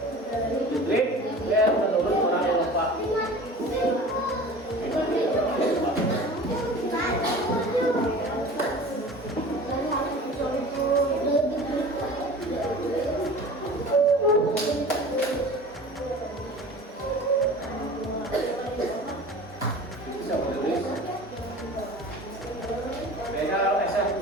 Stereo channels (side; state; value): both; normal; correlation 0.39